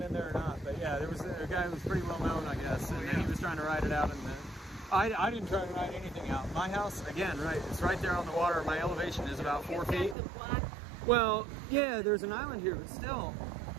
in there or not. But yeah, there was a guy who was pretty well known, I guess, and he was trying to ride it out. And I didn't try to ride anything out. My house, again, right? It's right there on the water. My elevation is about 4 feet. Got the block. Well, yeah, there's an island here, but still,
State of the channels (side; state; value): left; drops out; at 10.2 s